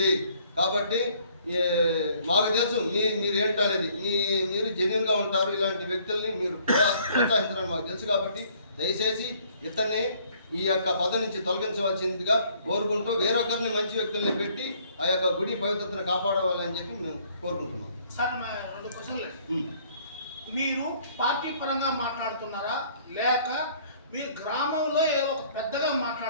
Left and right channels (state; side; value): inverted; both; correlation -0.61